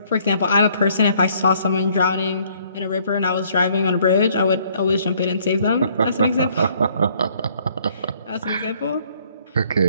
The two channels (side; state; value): both; inverted; correlation -0.63